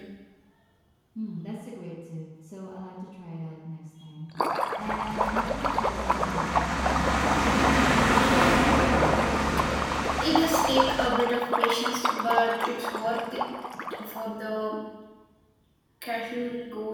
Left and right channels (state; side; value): identical; both; correlation 1.00